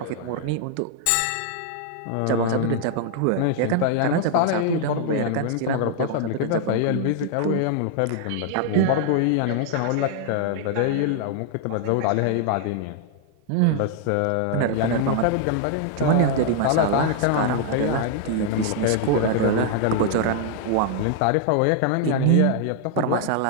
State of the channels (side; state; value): both; different; correlation 0.00